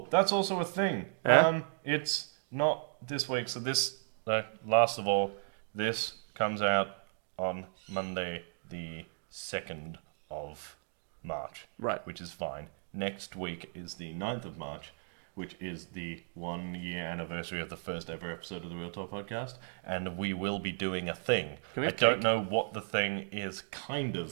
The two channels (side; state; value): left; silent; digital silence